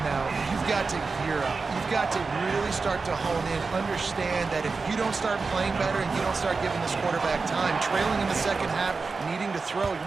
now, you've got to gear up. You've got to really start to hone in, understand that if you don't start playing better and you don't start giving this quarterback time, trailing in the second half, needing to throw, you're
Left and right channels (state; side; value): quieter; left; 4.3 dB